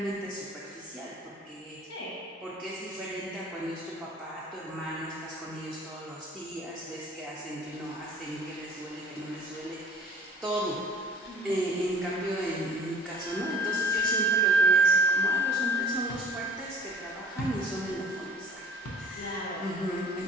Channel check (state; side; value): normal; both; correlation 0.49